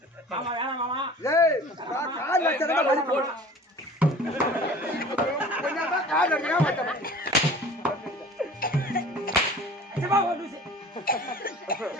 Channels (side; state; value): both; normal; correlation 0.44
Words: மாமா வேணாம் மாமா ஏய் கால் அடிச்சா வலி போடும் கொஞ்சம் கால் அடிக்கிறா மாட்டேன் சிவா ஓடுச்சு